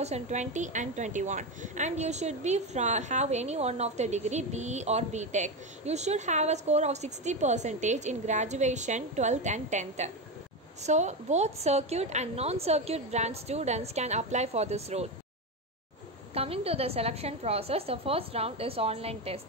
and 21, and you should be have any one of the degree, BE or BTech. You should have a score of 60% in graduation, 12th and 10th. So both circuit and non-circuit branch students can apply for this role. Coming to the selection process, the first round is online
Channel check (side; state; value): both; normal; correlation 0.15